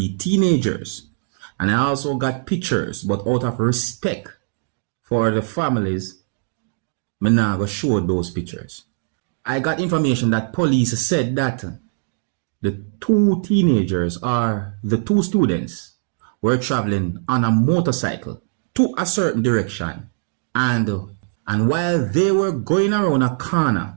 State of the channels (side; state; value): left; silent; digital silence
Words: teenagers. And I also got pictures, but out of respect for the families, I'm not going to show those pictures. I got information that police said that the 2 teenagers or the 2 students were traveling on a motorcycle to a certain direction. And while they were going around a